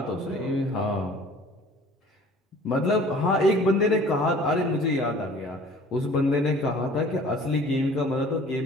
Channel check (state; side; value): normal; both; correlation 0.49